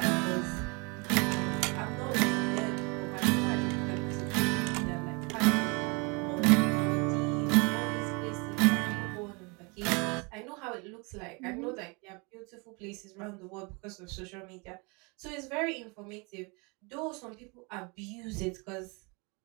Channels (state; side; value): quieter; left; 30.1 dB